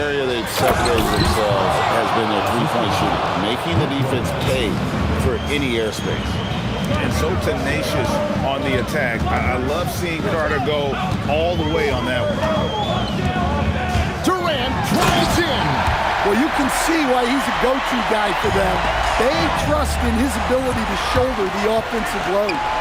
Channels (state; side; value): identical; both; correlation 1.00